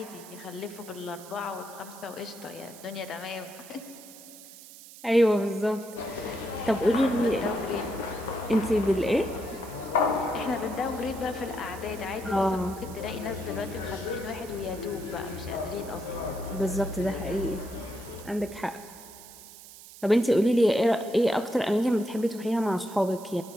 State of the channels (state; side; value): noise; right; hiss, 17 dB below the sound